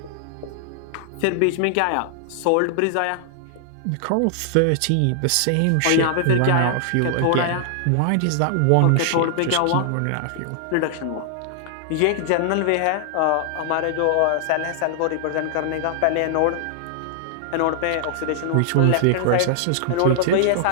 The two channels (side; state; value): both; different; correlation -0.01